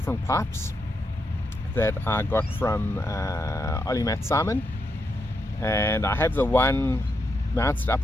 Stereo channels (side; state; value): both; normal; correlation 0.83